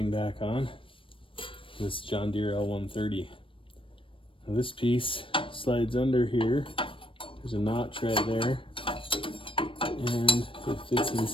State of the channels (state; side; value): late; right; 0.25 ms